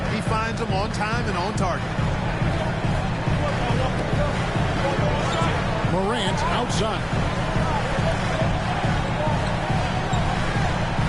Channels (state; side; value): identical; both; correlation 1.00